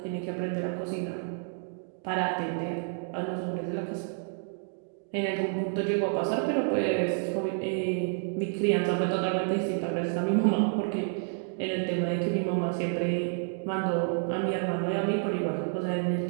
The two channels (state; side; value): silent; left; 58 dB below the other